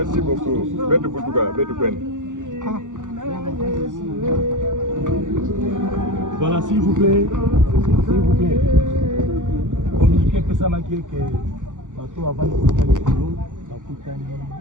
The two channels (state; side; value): late; left; 0.87 ms